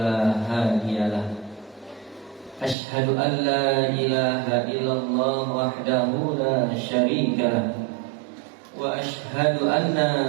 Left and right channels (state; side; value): drops out; left; at 2.8 s